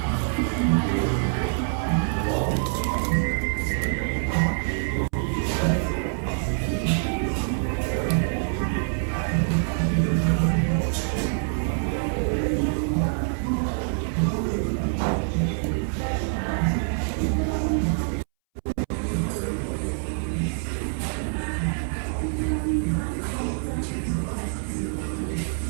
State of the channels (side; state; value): left; silent; 61 dB below the other